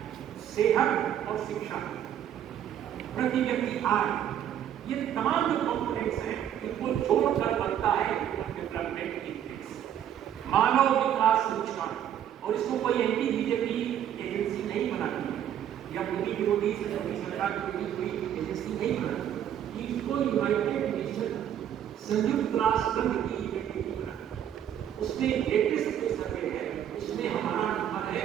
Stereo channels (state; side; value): quieter; left; 10.3 dB